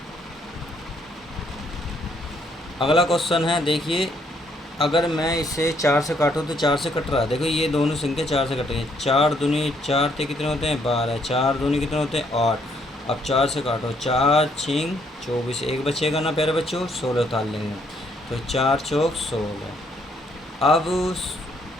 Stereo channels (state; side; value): normal; both; correlation 0.70